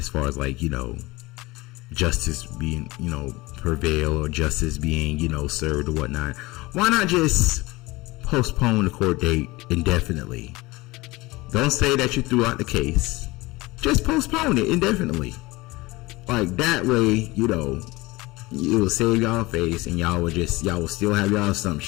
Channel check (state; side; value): quieter; right; 21.5 dB